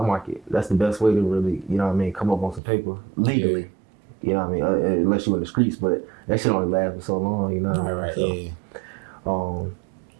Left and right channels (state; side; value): drops out; left; at 2.6 s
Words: market. That's the best way to really, you know what I mean, come up on some paper legally. Yeah. You know what I mean? Unless you in the streets, but that shit only lasts for so long, you know what I mean? Right, so,